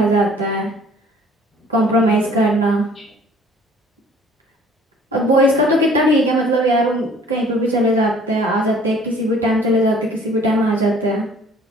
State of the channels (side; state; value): both; normal; correlation 0.54